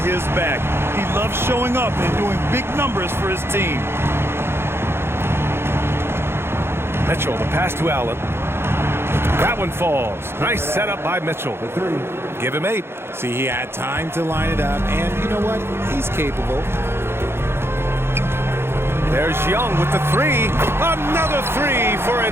his back. He loves showing up and doing big numbers for his team. Mitchell, the pass to Allen. That one falls. Nice setup by Mitchell. Give him 8. See, he had time to line it up, and you know what? He's capable. There's Young with the 3. Another 3 for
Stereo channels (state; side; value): late; left; 0.12 ms